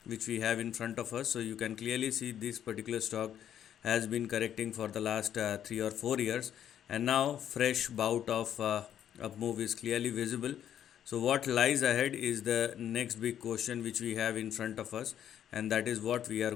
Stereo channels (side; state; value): right; quieter; 10.0 dB